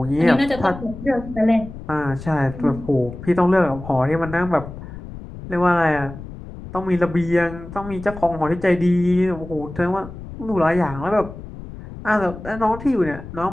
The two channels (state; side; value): noise; left; rumble, 13 dB below the sound